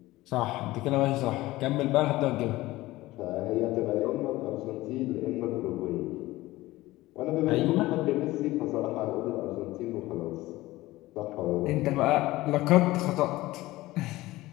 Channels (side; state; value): right; quieter; 18.2 dB